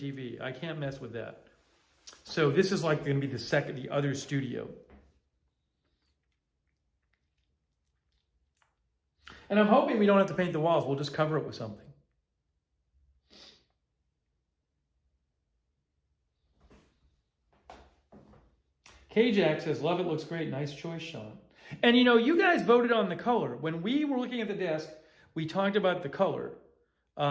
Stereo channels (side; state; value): both; identical; correlation 1.00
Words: I can't mess with that. So this is like going to be the other studio. And I'm hoping we don't have to paint the walls. We'll just cover it with something. K-Jack says, love it, looks great. Nice choice, Sean. And you guys voted on the color. When we were looking at the desk, we talked about the color.